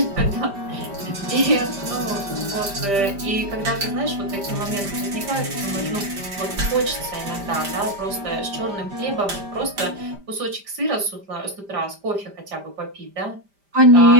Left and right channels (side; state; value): left; late; 5.0 ms